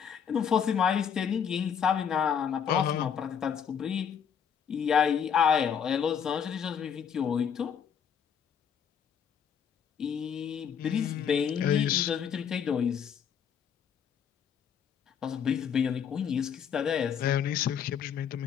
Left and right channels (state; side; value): quieter; right; 7.7 dB